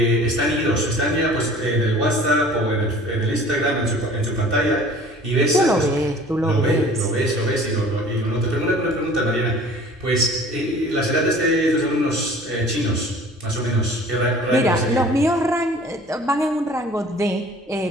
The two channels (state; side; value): normal; both; correlation 0.48